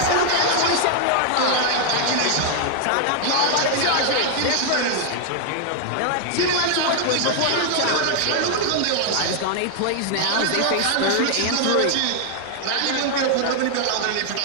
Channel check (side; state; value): both; different; correlation 0.00